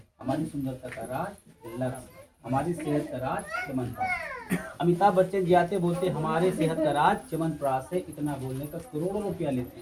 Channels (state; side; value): identical; both; correlation 1.00